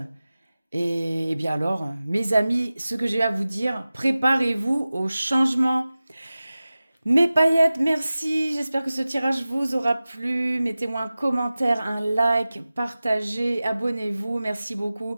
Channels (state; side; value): inverted; both; correlation -0.96